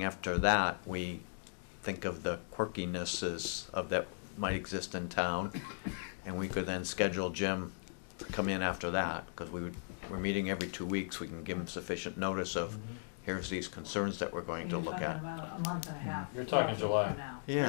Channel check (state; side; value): silent; right; digital silence